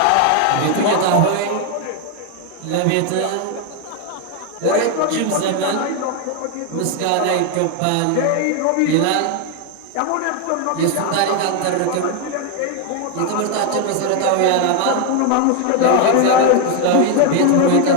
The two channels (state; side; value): different; both; correlation 0.01